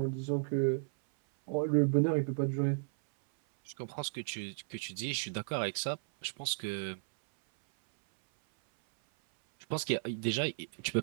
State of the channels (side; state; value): left; silent; 55 dB below the other